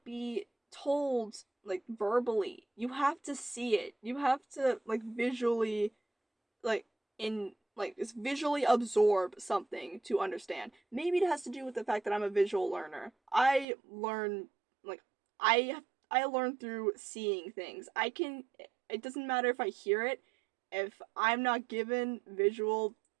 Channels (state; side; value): drops out; left; at 13.7 s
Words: be told like verbally. You have to see it. You have to like visually like in like just visually absorb something to understand. Maybe it has to do with the fact that I'm a visual learner. Like I I learn through seeing things. I can it doesn't matter if I hear it. If I'm not given visual